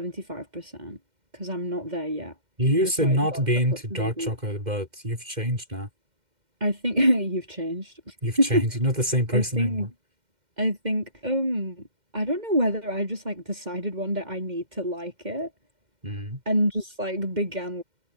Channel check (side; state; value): left; late; 2.1 ms